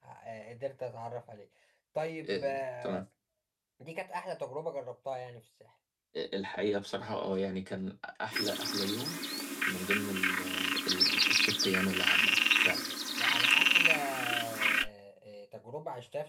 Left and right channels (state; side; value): identical; both; correlation 1.00